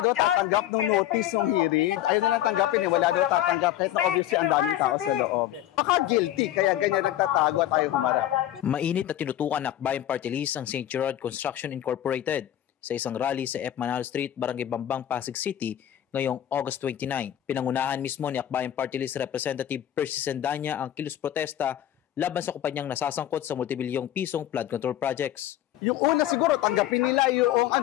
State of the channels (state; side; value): quieter; right; 12.4 dB